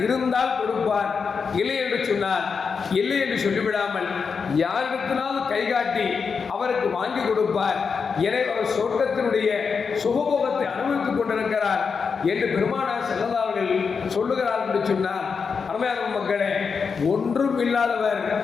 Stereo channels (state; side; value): quieter; right; 5.6 dB